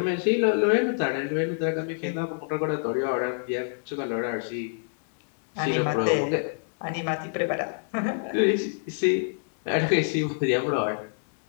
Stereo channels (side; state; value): right; silent; digital silence